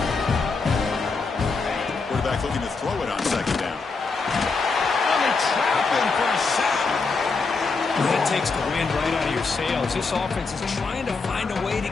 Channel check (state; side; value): quieter; right; 4.4 dB